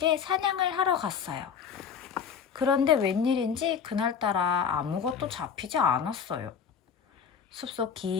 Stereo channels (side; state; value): right; quieter; 7.0 dB